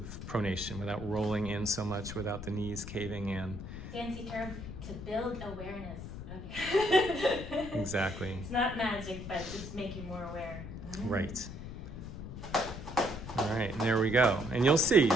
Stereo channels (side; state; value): left; noise; rumble, 9 dB below the sound